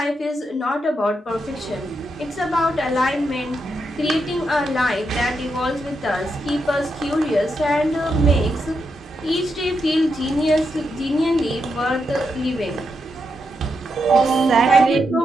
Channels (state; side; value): normal; both; correlation 0.83